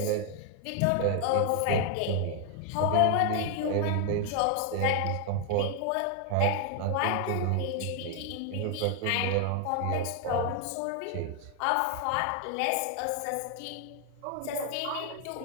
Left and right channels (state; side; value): different; both; correlation 0.00